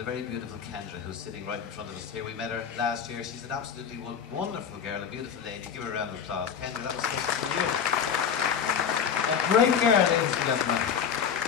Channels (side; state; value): right; quieter; 7.4 dB